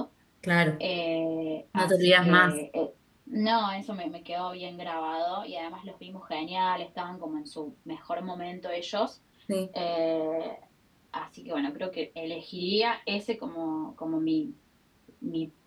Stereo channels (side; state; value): both; identical; correlation 1.00